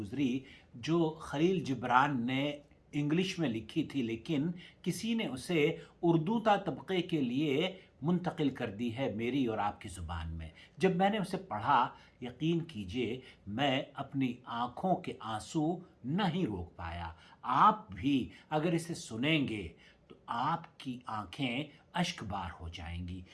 جو خلیل جبران نے انگلش میں لکھی تھی، لیکن کسی نے اسے اردو تا طبقے کے لیے منتقل کر دی ہے میری اور آپ کی زبان میں۔ جب میں نے اسے پڑھا، یقین کیجئے میں اپنی آنکھوں کے آنسو نہیں روک پایا۔ آپ بھی اگر اسے سنیں گے تو آپ کی آنکھیں اشک بار ہو جائیں گی۔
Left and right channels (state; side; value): identical; both; correlation 1.00